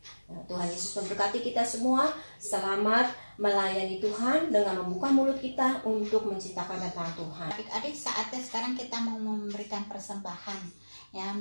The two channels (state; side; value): inverted; both; correlation -1.00